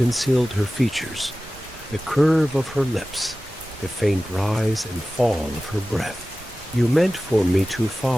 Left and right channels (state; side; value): normal; both; correlation 0.96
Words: her features, the curve of her lips, the faint rise and fall of her breath. "You meant for me to